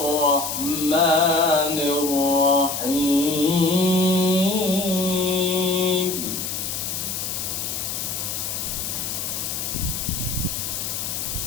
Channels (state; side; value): noise; left; hiss, 3 dB below the sound